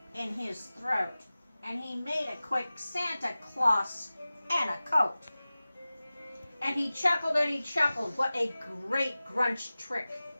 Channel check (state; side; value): inverted; both; correlation -0.97